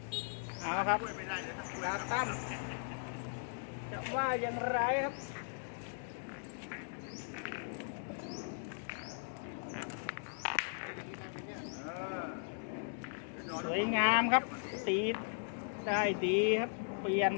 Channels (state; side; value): silent; right; digital silence